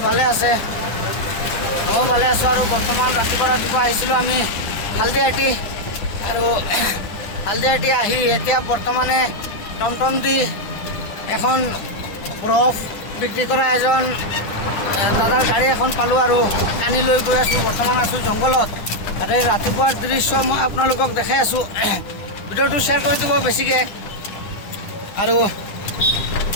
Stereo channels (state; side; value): late; right; 9.9 ms